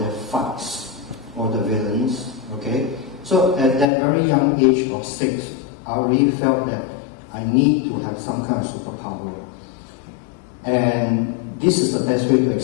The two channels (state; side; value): drops out; right; at 3.9 s